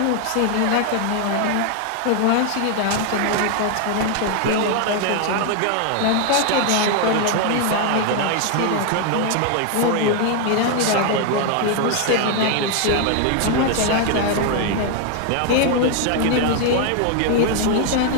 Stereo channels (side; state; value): both; different; correlation 0.00